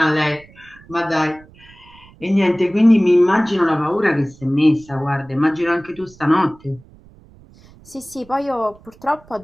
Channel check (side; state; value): right; noise; rumble, 25 dB below the sound